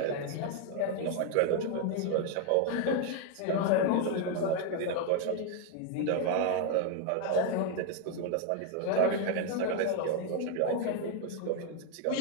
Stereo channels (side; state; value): both; different; correlation 0.01